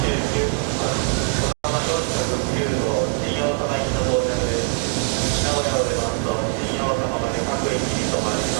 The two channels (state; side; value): quieter; left; 37.2 dB